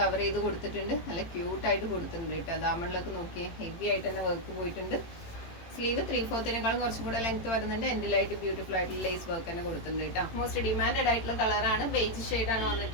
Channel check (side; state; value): right; late; 18 ms